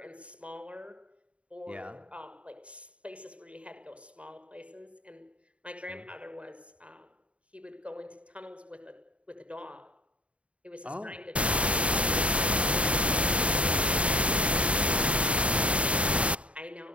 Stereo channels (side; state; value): left; late; 0.063 ms